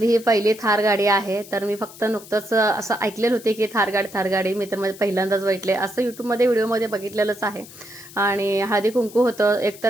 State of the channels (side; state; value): left; noise; hiss, 18 dB below the sound